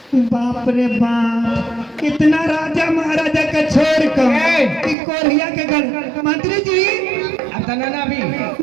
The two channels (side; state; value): left; drops out; at 5.0 s